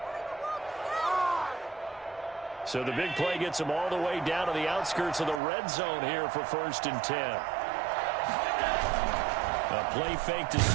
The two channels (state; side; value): drops out; left; at 5.4 s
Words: So the big play gets him all the way down to the outskirts of the red zone here for 1st and 10. A play fake to